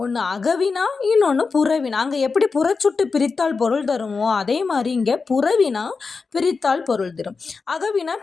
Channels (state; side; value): quieter; right; 4.6 dB